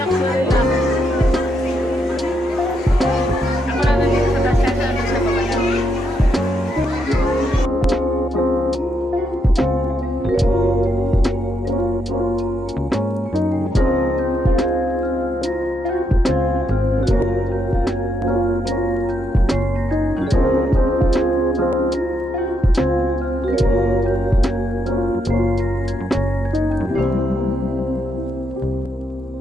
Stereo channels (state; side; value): normal; both; correlation 0.79